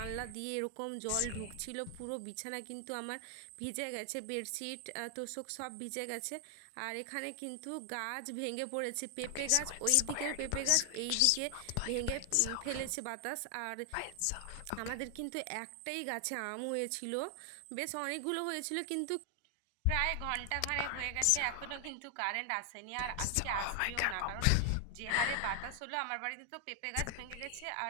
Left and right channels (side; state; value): both; different; correlation 0.00